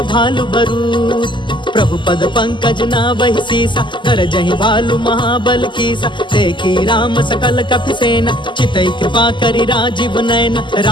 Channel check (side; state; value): right; late; 0.23 ms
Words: भालु बरूथ। प्रभु पद पंकज नावहि सीसा, गरजहि भालु महाबल कीसा। देखी राम सकल कपिसेना, चितई कृपा करि राजीव नयन।